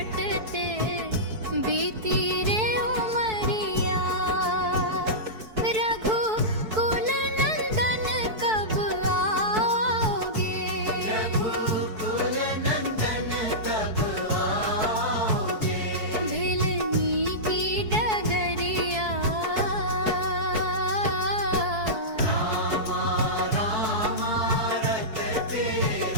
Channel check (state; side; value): late; left; 4.6 ms